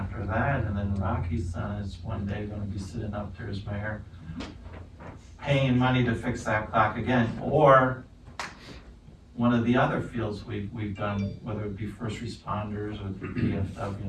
that, and then Rocky's son is one day gonna be sitting up there as mayor, paying spending money to fix that clock again, or one of the other fields we've done, whether it be first responders or the DFW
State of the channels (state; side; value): identical; both; correlation 1.00